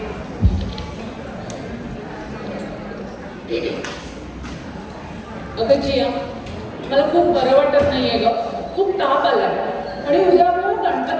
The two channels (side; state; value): both; identical; correlation 1.00